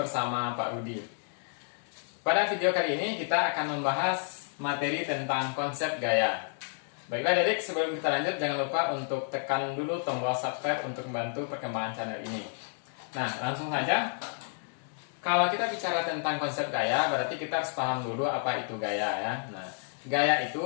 Pak Rudi. Pada video kali ini kita akan membahas materi tentang konsep gaya. Baiklah adik, sebelum kita lanjut jangan lupa untuk tekan dulu tombol subscribe untuk membantu perkembangan channel ini. Nah, langsung saja. Kalau kita bicara tentang konsep gaya, berarti kita harus paham dulu apa itu gaya ya. Nah, gaya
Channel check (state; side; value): silent; right; 57 dB below the other